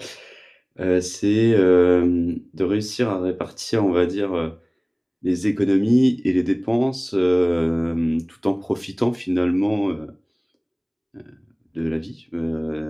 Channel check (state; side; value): identical; both; correlation 1.00